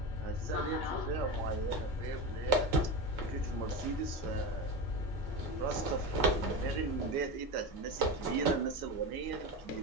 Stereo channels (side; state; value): both; normal; correlation 0.22